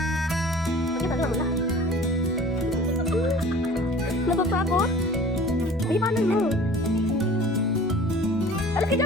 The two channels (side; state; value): left; noise; hum, 22 dB below the sound